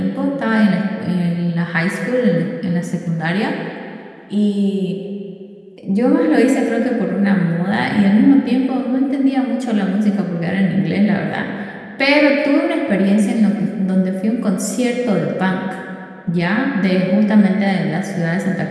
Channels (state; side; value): identical; both; correlation 1.00